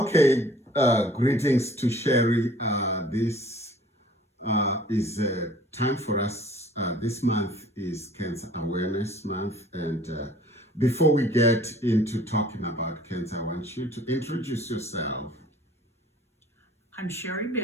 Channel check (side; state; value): both; normal; correlation 0.52